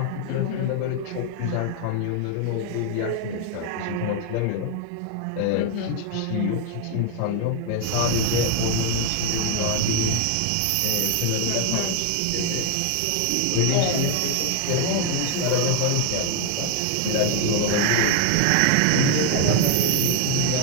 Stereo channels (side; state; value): both; different; correlation 0.00